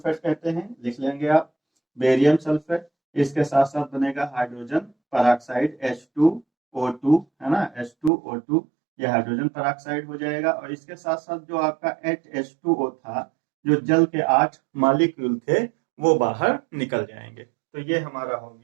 कहते हैं, लिख लेंगे आप बेरियम सल्फेट। इसके साथ साथ बनेगा हाइड्रोजन पेरोक्साइड H2O2, है ना, H2O2, ये हाइड्रोजन पेरोक्साइड हो जाएगा। और इसके साथ साथ जो आपका H2O था, जो जल के 8 मॉलिक्यूल थे, वो बाहर निकल जाएंगे। तो ये हमारा हो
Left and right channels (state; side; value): drops out; left; at 8.1 s